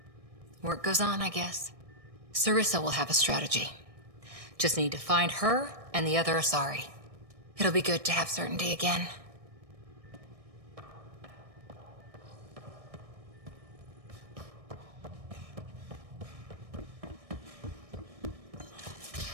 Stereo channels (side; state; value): left; late; 1.6 ms